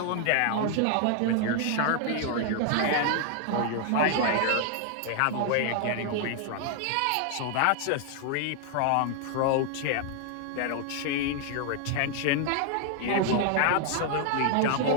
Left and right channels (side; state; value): both; different; correlation 0.00